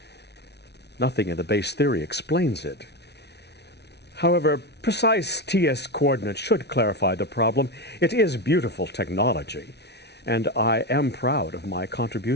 Nothing in the base theory explains it. However, precise TS coordinates should clarify the problem. It is beautiful technology, and I am proud of my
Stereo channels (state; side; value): late; right; 0.49 ms